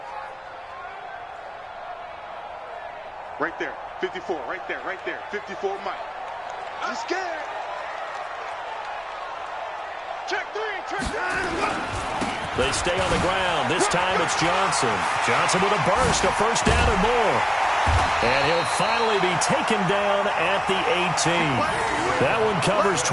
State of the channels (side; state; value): both; identical; correlation 1.00